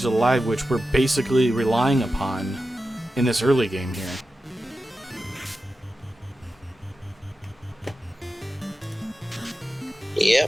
alive, which we're basically relying upon in this early game here.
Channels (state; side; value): normal; both; correlation 0.92